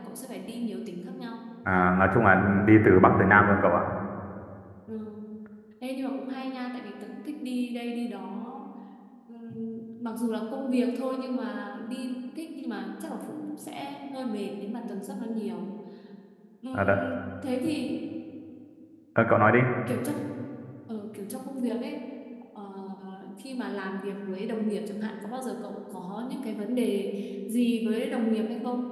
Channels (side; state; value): both; identical; correlation 1.00